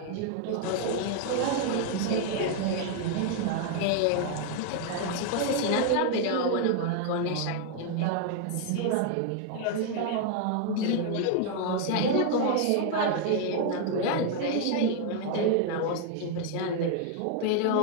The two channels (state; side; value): different; both; correlation 0.00